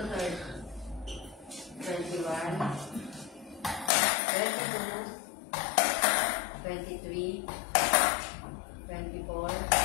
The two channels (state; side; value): drops out; right; at 3.9 s